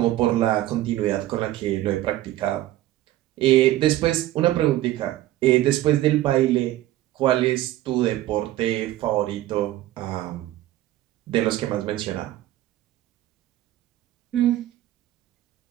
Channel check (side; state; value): left; quieter; 14.8 dB